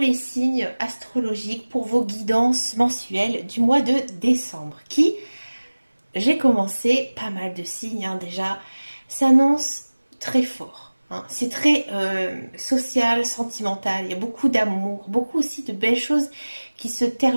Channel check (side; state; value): both; inverted; correlation -1.00